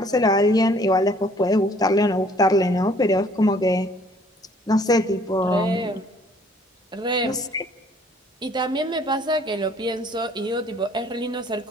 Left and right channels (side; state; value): both; normal; correlation 0.58